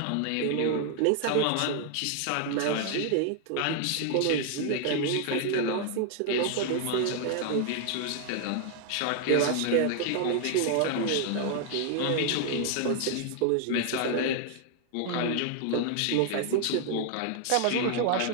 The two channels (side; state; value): both; different; correlation 0.00